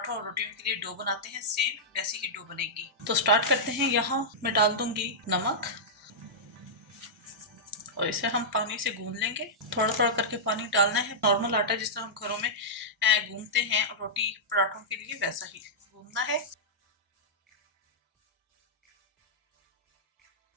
और रोटियों के लिए डो बनाते हैं, सेम वैसी ही डो बनेगी। तो स्टार्ट करते हैं। यहाँ मैं डाल दूंगी नमक और इसे हम पानी से गूंद लेंगे। थोड़ा थोड़ा करके पानी डालना है। नॉर्मल आटा जिस तरह हम घरों में गूंदते हैं रोटी पराठों के लिए, वैसा ही गूंदना है।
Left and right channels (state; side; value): normal; both; correlation -0.11